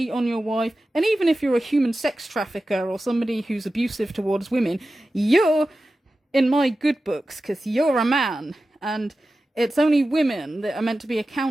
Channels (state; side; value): normal; both; correlation 0.94